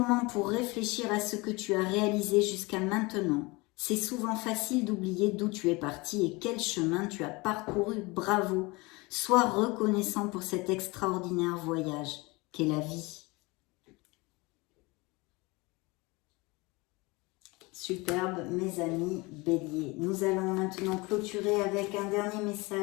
pour réfléchir à ce que tu as réalisé jusqu'à maintenant. C'est souvent facile d'oublier d'où tu es parti et quel chemin tu as parcouru. Bravo. Sois reconnaissant pour cet extraordinaire voyage qu'est la vie. Superbe, mes amis béliers. Nous allons maintenant clôturer avec un dernier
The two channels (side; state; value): right; quieter; 24.7 dB